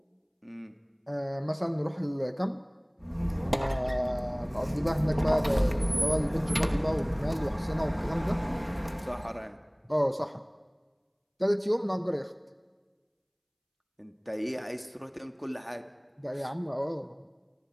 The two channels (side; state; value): both; identical; correlation 1.00